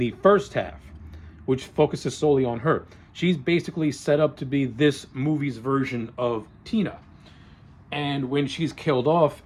first half, which focuses solely on her. She's basically set up to be this movie's version of Tina. And when she's killed off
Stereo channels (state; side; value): identical; both; correlation 1.00